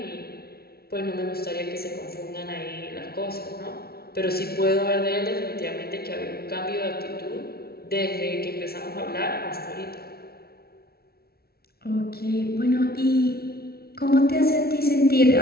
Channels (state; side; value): late; right; 0.45 ms